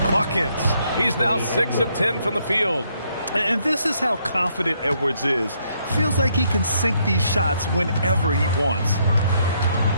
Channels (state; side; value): inverted; both; correlation -0.72